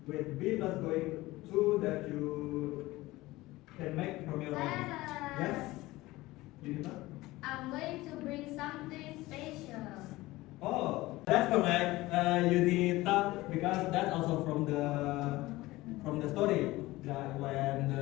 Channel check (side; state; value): right; quieter; 19.0 dB